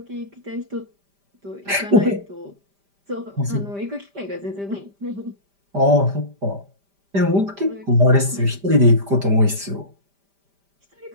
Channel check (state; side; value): late; left; 5.0 ms